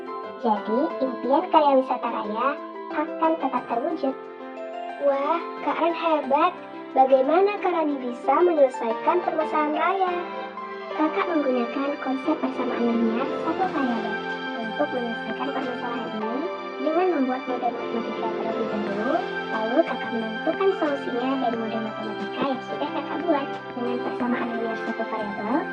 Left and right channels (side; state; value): both; identical; correlation 1.00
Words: Jadi, impian karya wisata Raya akan tetap terwujud. Wah, Kak Ran hebat. Bagaimana Kak Rani bisa menyelesaikan permasalahan Raya? Kakak menggunakan konsep persamaan linear satu variabel untuk menyelesaikan permasalahan ini dengan membuat model matematika terlebih dahulu, lalu kakak menentukan solusinya dari model matematika yang sudah kakak buat. Dengan persamaan linear satu variabel,